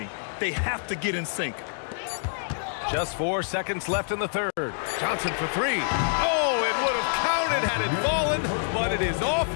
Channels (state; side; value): silent; right; digital silence